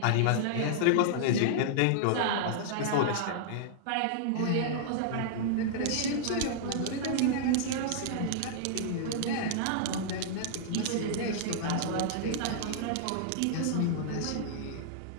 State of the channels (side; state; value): both; different; correlation -0.01